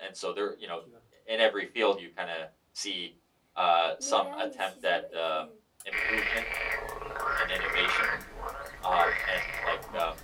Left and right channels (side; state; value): both; identical; correlation 1.00